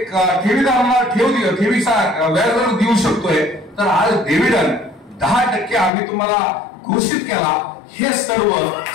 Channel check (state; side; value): drops out; right; at 5.9 s